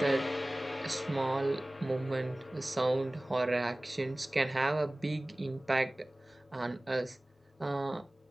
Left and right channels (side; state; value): both; normal; correlation 0.98